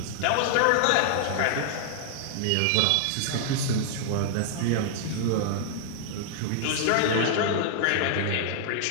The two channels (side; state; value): both; different; correlation -0.01